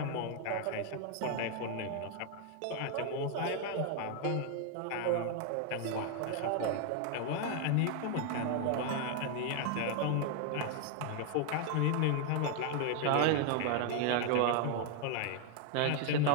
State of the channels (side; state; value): both; different; correlation 0.00